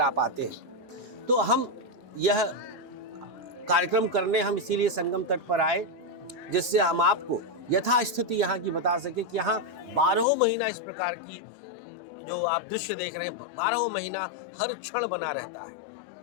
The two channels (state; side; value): drops out; right; at 10.2 s